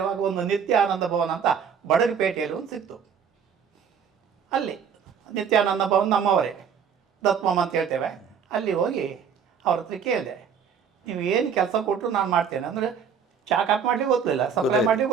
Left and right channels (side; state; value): left; quieter; 7.0 dB